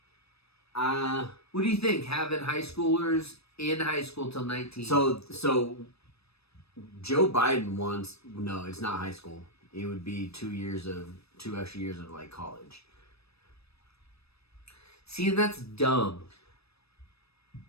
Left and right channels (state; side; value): late; right; 0.78 ms